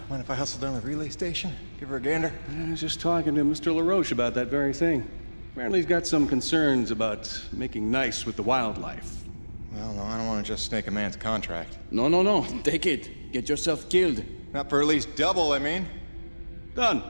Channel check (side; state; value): both; inverted; correlation -1.00